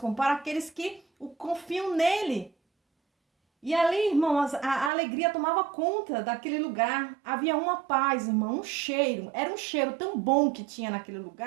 para aqueles que o confiam nele. E ali, irmãos, a alegria tomava conta daquele lugar. Havia uma paz, irmão, um cheiro. Era um cheiro tão bom que tinha naquele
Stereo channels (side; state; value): left; drops out; at 4.9 s